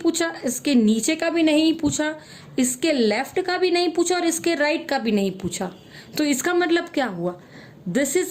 इसके नीचे का भी नहीं पूछा, इसके लेफ्ट का भी नहीं पूछा और इसके राइट का भी नहीं पूछा. तो इसका मतलब क्या हुआ, this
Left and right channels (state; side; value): identical; both; correlation 1.00